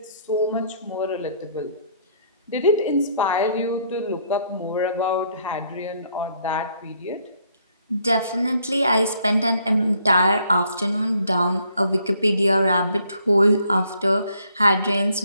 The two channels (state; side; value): inverted; both; correlation -0.67